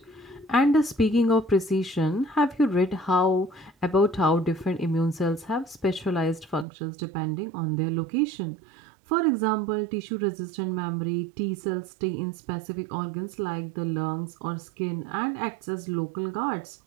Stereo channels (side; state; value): left; drops out; at 6.7 s